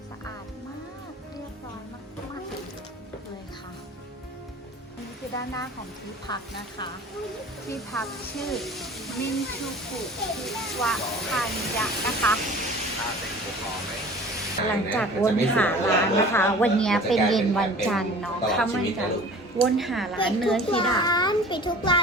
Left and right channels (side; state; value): both; normal; correlation 0.43